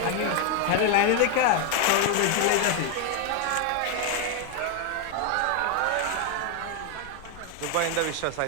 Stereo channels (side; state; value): both; different; correlation 0.01